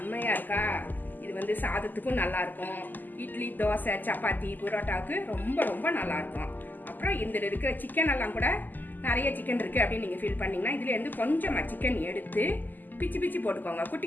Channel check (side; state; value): right; late; 0.086 ms